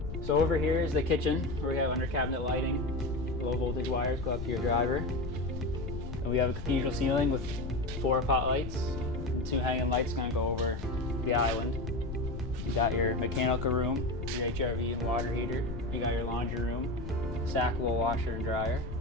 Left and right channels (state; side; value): noise; left; rumble, 7 dB below the sound